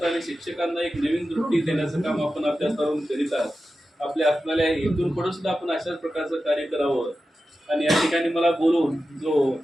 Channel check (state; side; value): normal; both; correlation 0.92